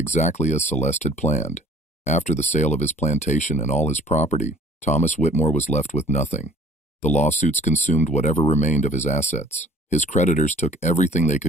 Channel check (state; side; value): normal; both; correlation 0.50